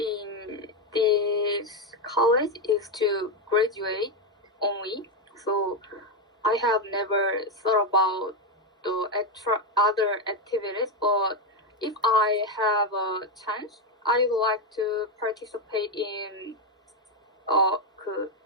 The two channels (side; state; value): both; normal; correlation 0.07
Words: this college is to graduate only. So I have never thought about the other activities, but if I have a chance, I would like to participate in